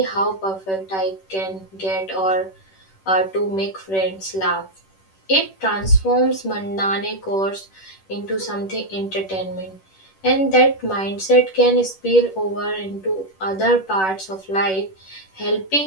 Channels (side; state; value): right; late; 10 ms